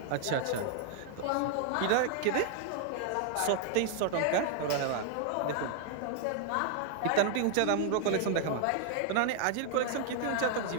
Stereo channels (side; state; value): both; different; correlation 0.00